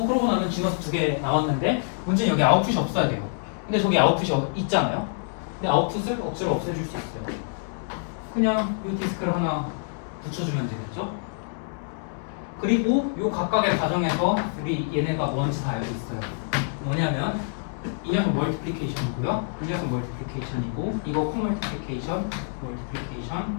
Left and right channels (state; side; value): silent; right; digital silence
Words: 나면 지너스 2개 나왔는데 문제는 여기 아웃풋이 없어야 돼요. 근데 저기 아웃풋이 있잖아요. 근데 아웃풋을 억지로 없애줄 수 있어요. 그냥 이 디스크를 하나 붙여주면 되겠죠. 그리고 요 각각의 과정에서 우리 얘네가 뭔지 다 알고 있어요. 뭐냐면 이 녀석 멀티플리케이션이고요. 이 녀석 멀티플리케이션이고 이거 코멀티플리케이션, 멀티플리케이션,